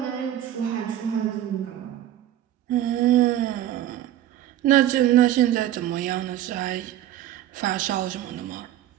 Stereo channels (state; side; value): quieter; left; 12.3 dB